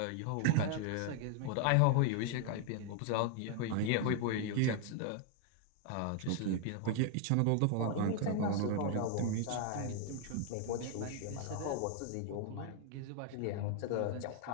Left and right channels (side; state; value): both; different; correlation 0.00